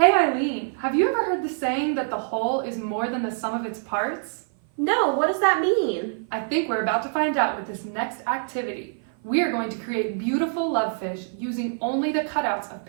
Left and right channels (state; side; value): silent; left; 56 dB below the other